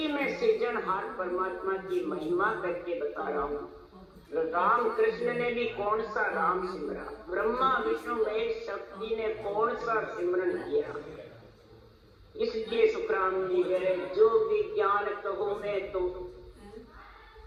मैं सृजनहार परमात्मा की महिमा करके बता रहा हूँ। राम कृष्ण ने भी कौन सा राम सिमरा, ब्रह्मा विष्णु महेश शक्ति ने कौन सा सिमरन किया। इसलिए सुखराम जी कह रहे जो विज्ञान कहो मैं तो,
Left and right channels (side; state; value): both; identical; correlation 1.00